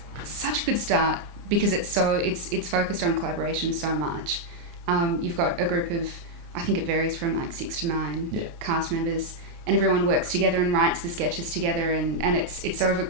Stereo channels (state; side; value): late; left; 29 ms